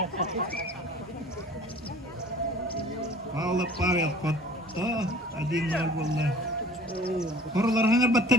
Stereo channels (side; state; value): both; normal; correlation 0.47